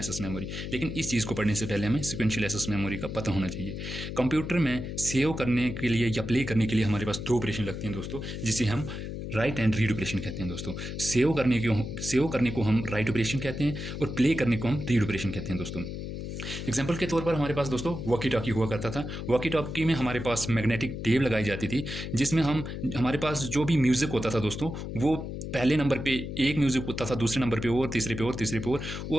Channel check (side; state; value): left; noise; hum, 6 dB below the sound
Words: मेमोरी। लेकिन इस चीज़ को पढ़ने से पहले हमें सीक्वेंशियल एक्सेस मेमोरी का पता होना चाहिए। कंप्यूटर में सेव करने के लिए या प्ले करने के लिए हमारे पास दो ऑपरेशन लगते हैं दोस्तों, जिसे हम राइट एंड रीड ऑपरेशन कहते हैं दोस्तों। सेव करने को हम राइट ऑपरेशन कहते हैं और प्ले करने को हम रीड ऑपरेशन कहते हैं दोस्तों। एग्जाम्पल के तौर पर हमारे पास दोस्तों वॉकी टॉकी हुआ करता था। वॉकी टॉकी में हमारे पास मैग्नेटिक टेप लगाई जाती थी, जिसमें हमारे पास जो भी म्यूज़िक होता था दोस्तों, वो पहले नंबर पे एक म्यूज़िक होता था, दूसरे नंबर पे और तीसरे पे और तीसरे पे